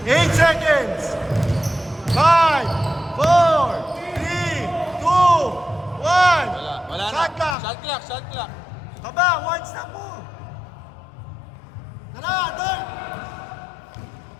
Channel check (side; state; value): right; drops out; at 7.6 s